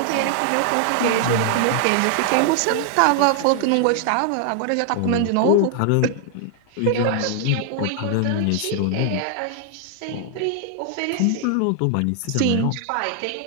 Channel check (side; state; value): both; different; correlation 0.00